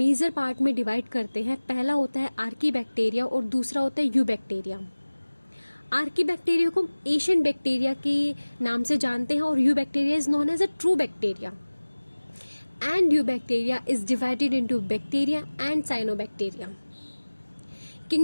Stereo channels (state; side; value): inverted; both; correlation -1.00